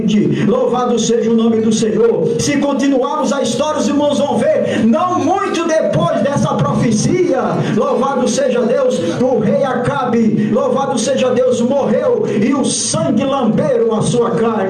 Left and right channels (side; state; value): both; identical; correlation 1.00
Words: Louvado seja o nome do Senhor. Se continuarmos a história, os irmãos vão ver, não muito depois dessa profecia, louvado seja Deus, o rei Acabe, louvado seja Deus, morreu e o sangue lamberam a sua